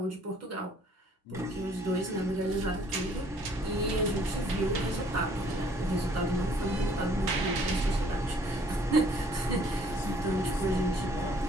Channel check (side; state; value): both; normal; correlation 0.60